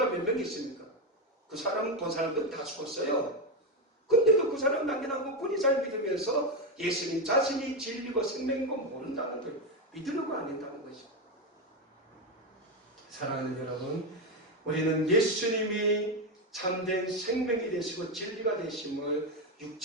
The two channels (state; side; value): normal; both; correlation 0.09